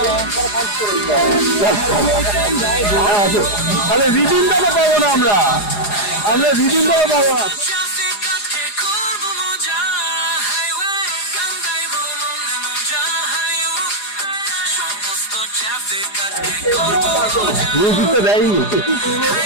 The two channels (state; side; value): late; right; 4.9 ms